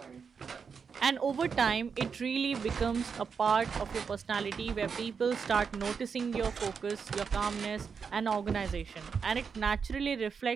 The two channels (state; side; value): quieter; left; 6.0 dB